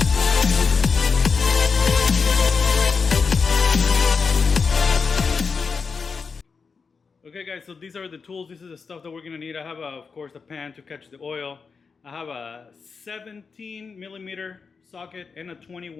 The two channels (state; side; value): quieter; right; 5.1 dB